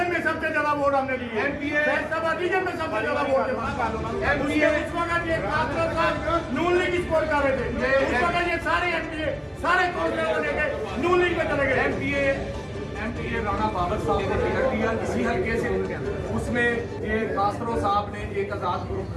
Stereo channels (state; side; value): identical; both; correlation 1.00